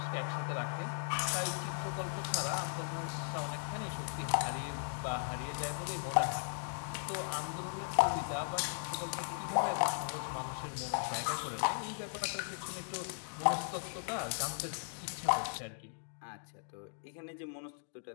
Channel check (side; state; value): right; silent; digital silence